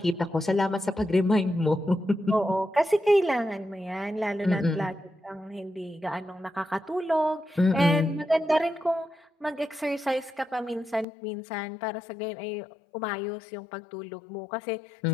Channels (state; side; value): drops out; right; at 11.1 s